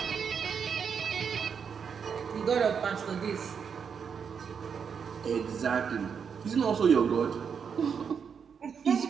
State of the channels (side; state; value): left; quieter; 6.7 dB